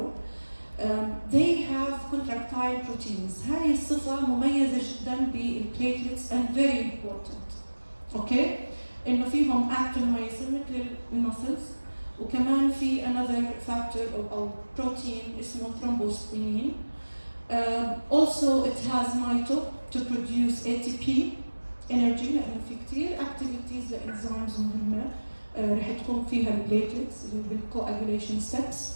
They have contractile proteins. هاي الصفة مميزة جدا بالplatelets and very important. Okay? إنه فيهم actin-myosin مثل المسلز، وكمان في another factor أو protein اسمه thrombosplenin. Also it has mito to produce ATP energy لأنه في كتير activities لإنزيمز مهمة رح تكون فيها البليتلتس اللي هو بالcoagulation steps.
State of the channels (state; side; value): inverted; both; correlation -1.00